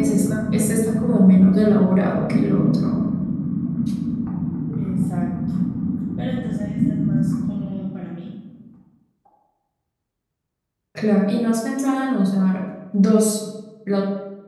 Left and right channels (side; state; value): both; identical; correlation 1.00